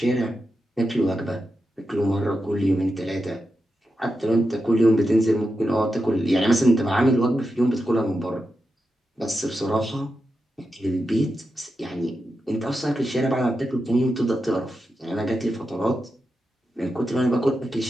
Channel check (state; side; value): normal; both; correlation 0.89